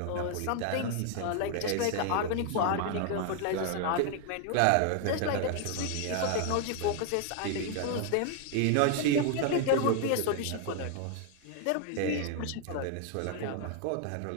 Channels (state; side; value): different; both; correlation 0.00